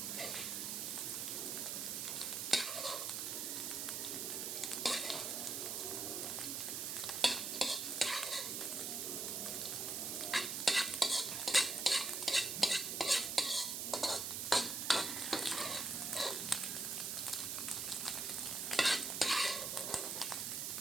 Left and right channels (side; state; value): right; noise; hiss, 2 dB below the sound